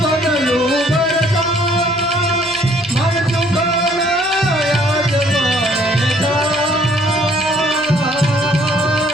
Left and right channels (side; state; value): right; noise; hum, 21 dB below the sound